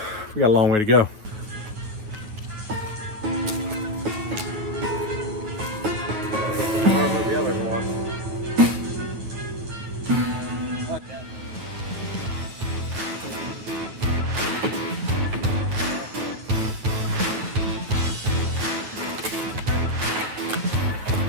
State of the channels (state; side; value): late; left; 9.2 ms